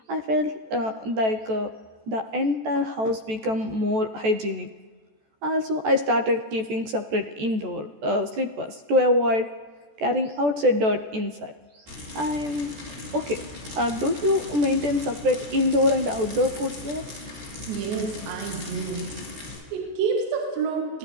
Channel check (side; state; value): left; late; 14 ms